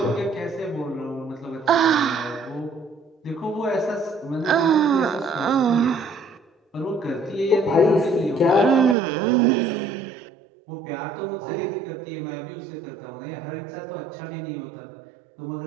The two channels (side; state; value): left; drops out; at 9.0 s